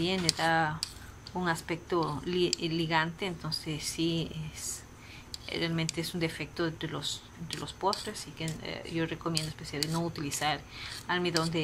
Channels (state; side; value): identical; both; correlation 1.00